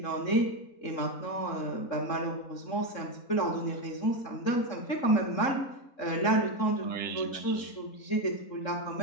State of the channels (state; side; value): late; right; 3.7 ms